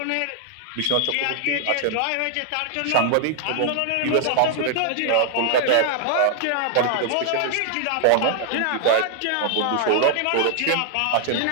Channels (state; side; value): different; both; correlation 0.00